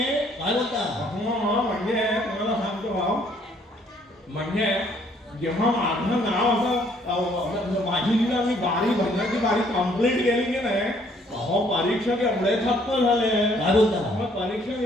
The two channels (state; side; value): normal; both; correlation 0.64